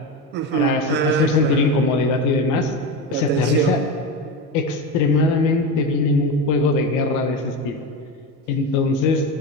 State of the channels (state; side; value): normal; both; correlation 0.20